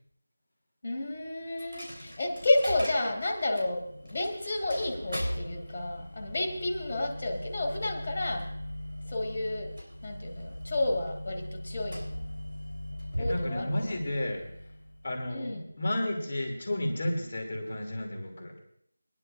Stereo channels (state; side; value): inverted; both; correlation -0.96